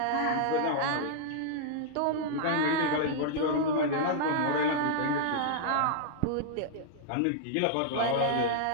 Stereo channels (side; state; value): both; different; correlation -0.01